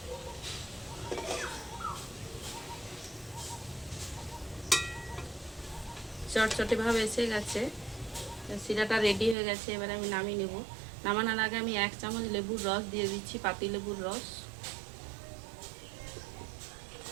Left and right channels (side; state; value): left; drops out; at 9.3 s